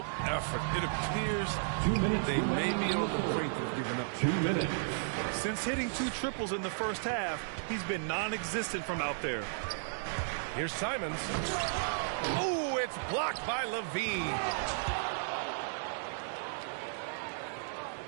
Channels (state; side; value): silent; left; digital silence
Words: effort. It appears they may be on the brink of giving up. 2 minutes. Since hitting 2 triples in the first half, he's been non-existent from out there. Here's Simons. Oh, it's blocked by LaVine.